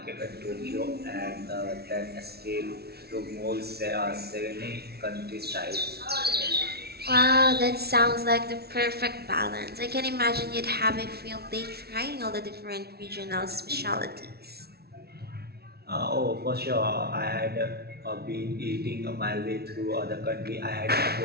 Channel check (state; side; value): late; left; 0.46 ms